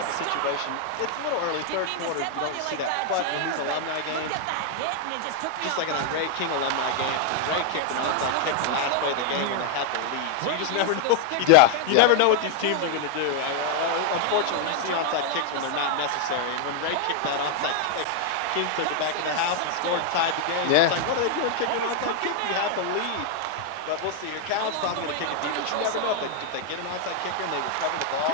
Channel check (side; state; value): both; different; correlation 0.00